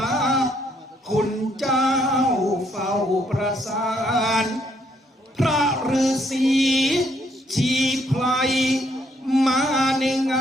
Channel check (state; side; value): normal; both; correlation 0.70